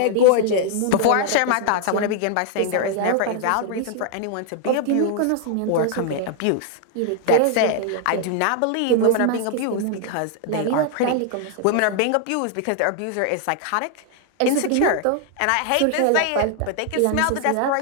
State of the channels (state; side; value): different; both; correlation 0.00